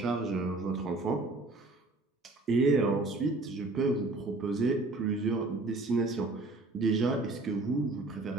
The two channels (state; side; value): quieter; left; 3.1 dB